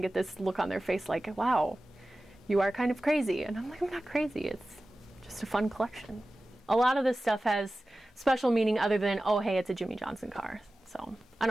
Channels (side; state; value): both; normal; correlation 0.96